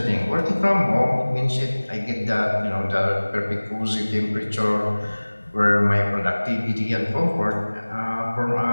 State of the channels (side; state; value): both; inverted; correlation -1.00